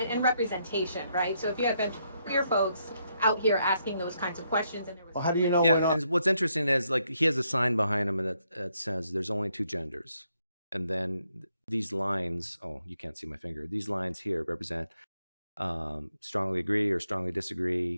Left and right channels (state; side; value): inverted; both; correlation -0.76